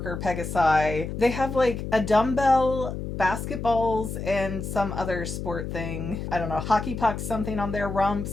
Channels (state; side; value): noise; left; hum, 6 dB below the sound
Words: Pegasi, they have like a dumbbell, basketballs, and some other sport thing. I don't know, hockey pucks, something on their